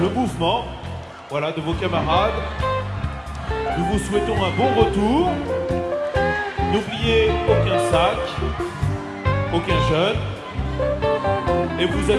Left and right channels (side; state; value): both; identical; correlation 1.00